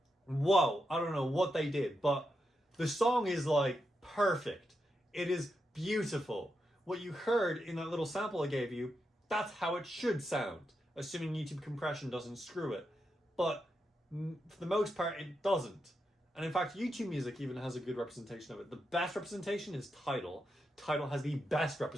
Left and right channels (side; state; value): both; normal; correlation 0.85